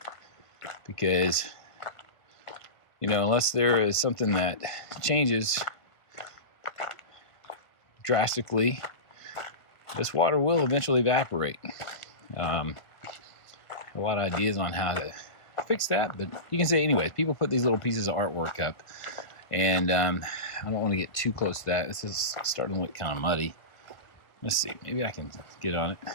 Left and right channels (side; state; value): right; late; 1.5 ms